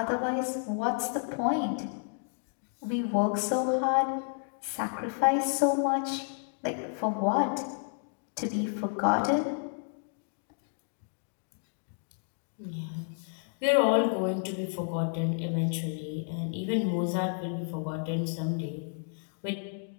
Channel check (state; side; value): silent; right; 57 dB below the other